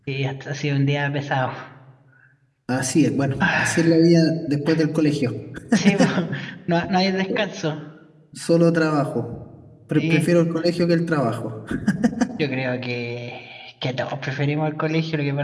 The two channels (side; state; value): both; identical; correlation 1.00